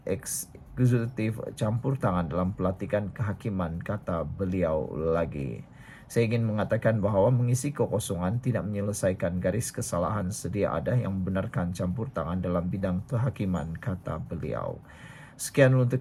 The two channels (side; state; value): both; identical; correlation 1.00